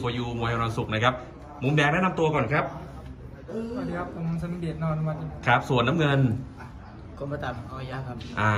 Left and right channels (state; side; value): identical; both; correlation 1.00